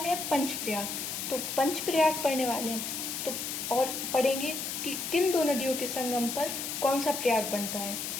हैं पंचप्रयाग। तो पंचप्रयाग पढ़ने वाले हैं तो और पढ़ेंगे कि किन दो नदियों के संगम पर कौन सा प्रयाग बनता है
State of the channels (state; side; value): noise; left; hiss, 4 dB below the sound